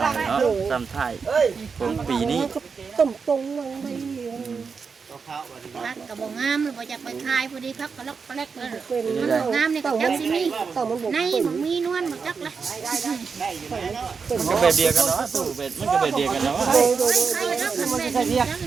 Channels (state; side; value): quieter; left; 5.4 dB